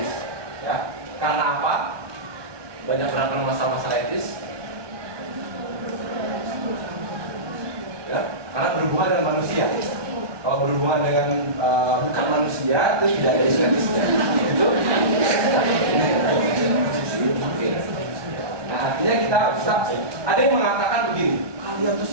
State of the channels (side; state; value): left; late; 1.2 ms